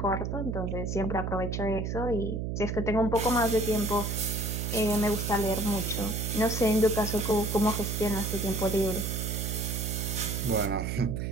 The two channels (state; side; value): noise; right; hum, 2 dB below the sound